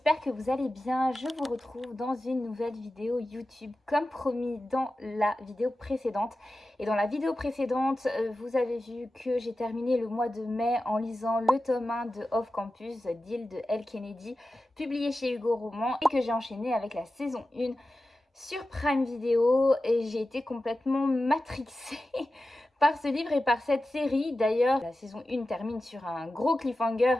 que vous allez bien. Je vous retrouve dans une nouvelle vidéo YouTube comme promis dans la vidéo précédente. Et dans la vidéo précédente, vous avez vu que j'ai terminé le mois de mai en lisant le tome 1 de Off Campus d'Hill de Elle Kennedy, publié chez Hugo Roman, et que j'ai enchaîné avec la saison 1 sur Prime Video et j'ai été complètement matrixée par ce livre et par cette série. D'ailleurs, la saison 1 termine sur un gros cliffhanger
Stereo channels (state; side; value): normal; both; correlation 0.93